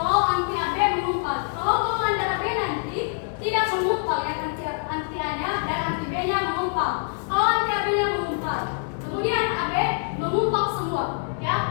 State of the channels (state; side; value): silent; right; 62 dB below the other